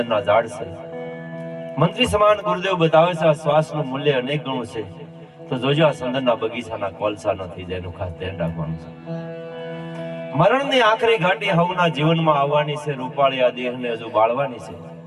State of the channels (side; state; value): both; identical; correlation 1.00